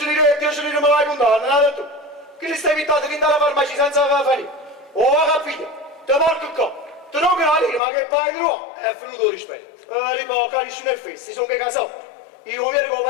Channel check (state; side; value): drops out; right; at 7.8 s